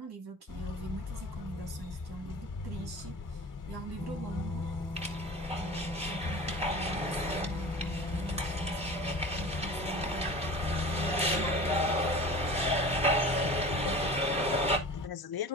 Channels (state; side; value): normal; both; correlation 0.37